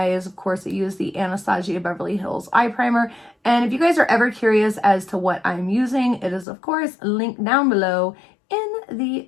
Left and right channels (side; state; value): right; drops out; at 6.5 s